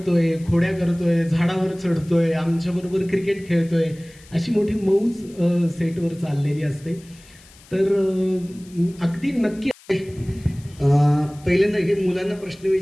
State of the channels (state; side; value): noise; left; hiss, 25 dB below the sound